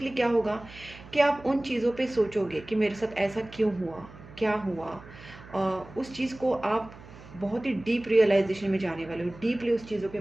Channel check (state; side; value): noise; right; hum, 18 dB below the sound